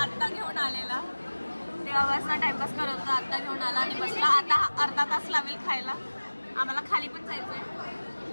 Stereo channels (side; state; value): both; inverted; correlation -1.00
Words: आत्ता घेऊन आलेला, तेव्हापासून टाइमपास करत होता, आत्ता घेऊन आला आणि बसला. आता अर्धा तास लागेल खायला. आम्हाला खाली पण जायचंय.